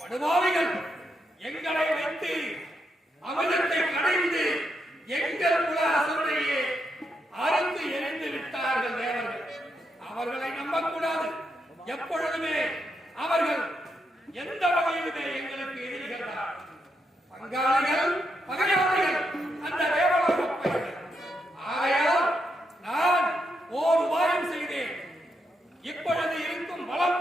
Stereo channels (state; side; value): normal; both; correlation 0.82